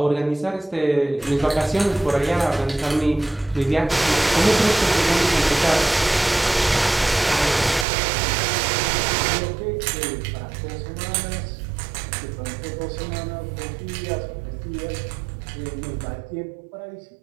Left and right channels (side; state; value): left; drops out; at 7.9 s